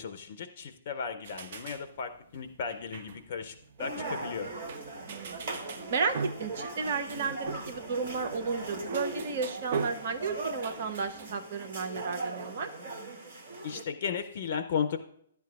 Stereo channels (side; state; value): both; inverted; correlation -0.55